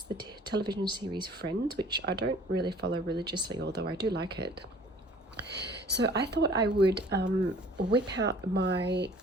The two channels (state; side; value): normal; both; correlation 0.51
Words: the television series Friends, which I don't really follow religiously, although I do like it. So I thought I would whip out my